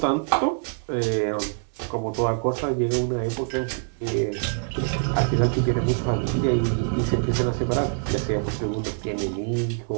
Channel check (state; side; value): silent; left; digital silence